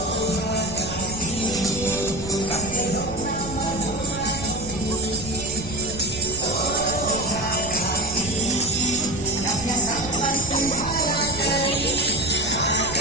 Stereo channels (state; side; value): noise; right; rumble, 11 dB below the sound